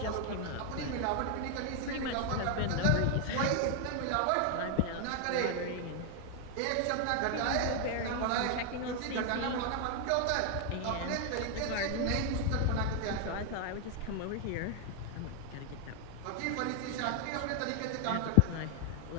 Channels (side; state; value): both; different; correlation 0.00